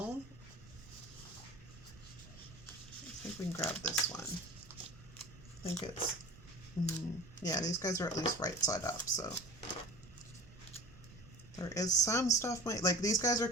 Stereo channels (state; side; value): noise; right; rumble, 19 dB below the sound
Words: I think we can grab this one. I think it's, yeah, these guys are at least right side up, so. There is some stuff, like these guys are